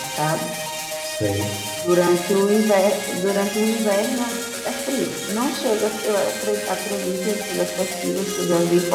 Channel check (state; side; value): identical; both; correlation 1.00